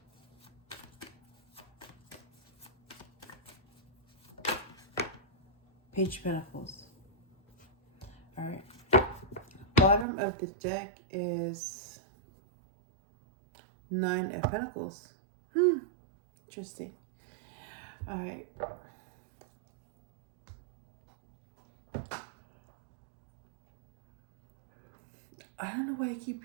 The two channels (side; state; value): left; drops out; at 10.1 s